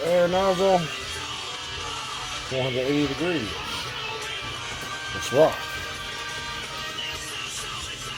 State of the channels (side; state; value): both; identical; correlation 1.00